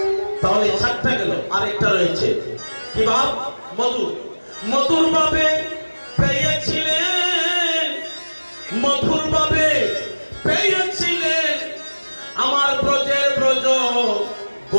তাহলে 4টা গেল। আরেকটা রয়েছে কি ভাব? মধুর। মধুর ভাবে পেয়েছিলেন, মধুর ভাবে পেয়েছিলেন আমার ব্রজের ব্রজ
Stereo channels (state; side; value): inverted; both; correlation -1.00